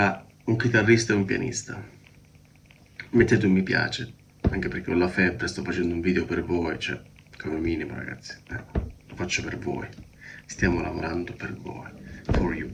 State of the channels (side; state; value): both; identical; correlation 1.00